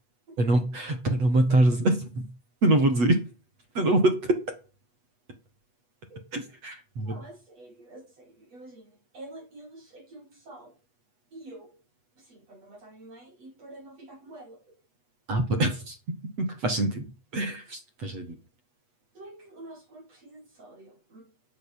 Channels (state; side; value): late; left; 8.2 ms